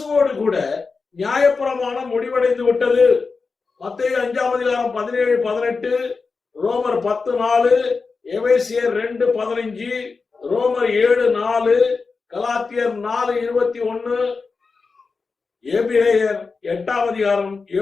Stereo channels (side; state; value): right; quieter; 4.5 dB